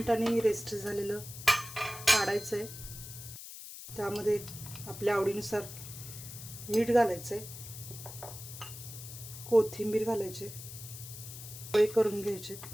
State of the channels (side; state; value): left; noise; hiss, 12 dB below the sound